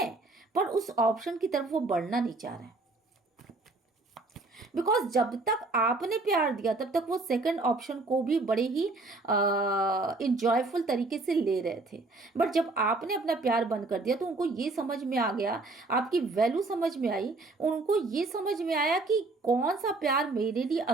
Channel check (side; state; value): left; quieter; 3.3 dB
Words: पर उस ऑप्शन की तरफ वो बढ़ना नहीं चाह रहे हैं, बिकॉज जब तक आपने प्यार दिया तब तक वो सेकंड ऑप्शन को भी बड़े ही इंजॉयफुल तरीके से ले रहे थे। बट जब आपने अपना प्यार बंद कर दिया तो उनको ये समझ में आ गया, आपकी वैल्यू समझ में आई, उनको ये समझ में आया कि कौन सा प्यार मेरे लिए